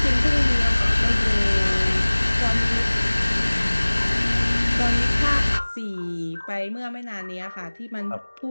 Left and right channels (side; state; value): both; inverted; correlation -1.00